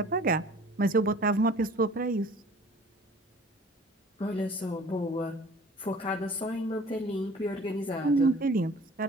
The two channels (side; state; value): both; normal; correlation 0.48